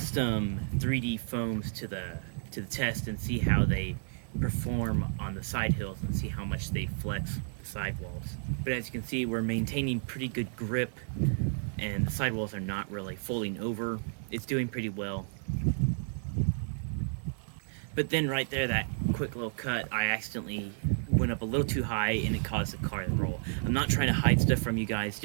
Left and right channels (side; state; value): left; silent; 57 dB below the other